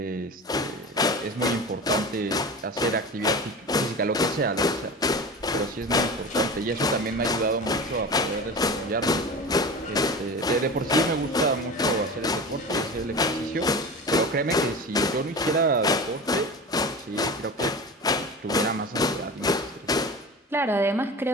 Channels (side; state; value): both; normal; correlation 0.31